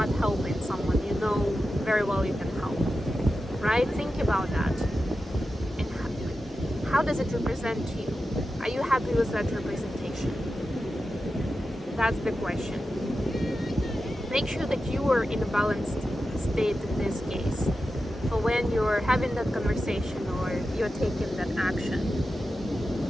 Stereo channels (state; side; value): normal; both; correlation 0.91